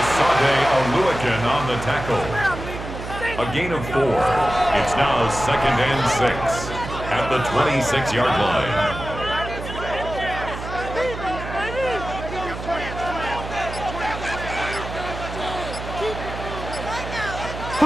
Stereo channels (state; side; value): noise; right; hum, 8 dB below the sound